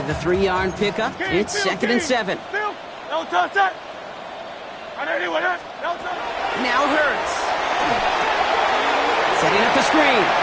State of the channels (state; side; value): identical; both; correlation 1.00